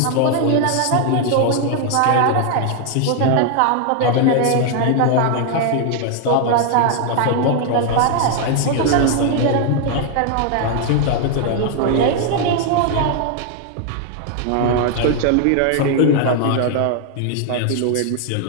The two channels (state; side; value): different; both; correlation 0.00